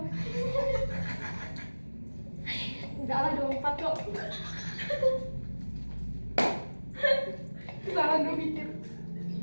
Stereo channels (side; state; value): both; inverted; correlation -1.00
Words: Enggak lah 24 kok. Salah gue mikir.